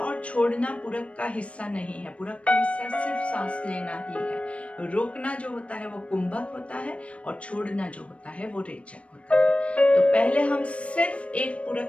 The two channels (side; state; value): right; late; 0.062 ms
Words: छोड़ना पूरक का हिस्सा नहीं है। पूरक का हिस्सा सिर्फ सांस लेना ही है। रोकना जो होता है वो कुंभक होता है और छोड़ना जो होता है वो रेचक होता है। तो पहले हम सिर्फ एक